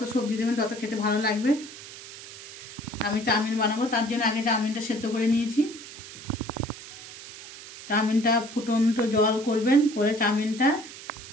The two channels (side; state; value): right; noise; hiss, 15 dB below the sound